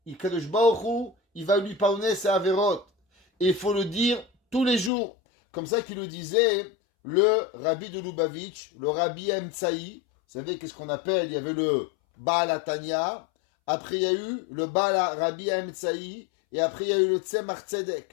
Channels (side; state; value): right; drops out; at 4.9 s